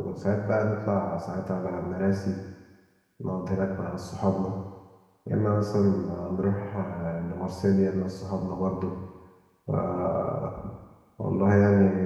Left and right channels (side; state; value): both; identical; correlation 1.00